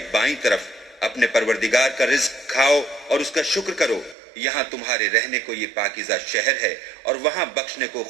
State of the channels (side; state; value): left; drops out; at 4.2 s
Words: बाईं तरफ. अपने परवरदिगार का रिज्क खाओ और उसका शुक्र करो. यहाँ तुम्हारे रहने को ये पाकीज़ा शहर है और वहाँ बख्शने को